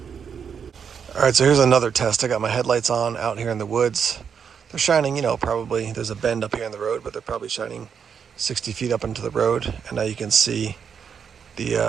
All right, so here's another test. I got my headlights on out here in the woods. They're shining, you know, probably, there's a bend up here in the road, but they're probably shining 60 feet up into the road. And now you can see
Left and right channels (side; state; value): left; quieter; 7.0 dB